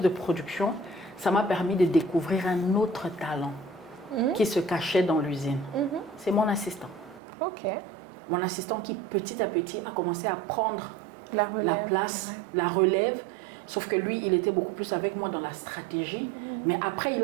de production, ça m'a permis de découvrir un autre talent qui se cachait dans l'usine. C'est mon assistant. Mon assistant qui petit à petit a commencé à prendre la place, la relève. Sauf que lui, il était beaucoup plus avec moi dans la stratégie. Mais après, il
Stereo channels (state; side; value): drops out; left; at 7.2 s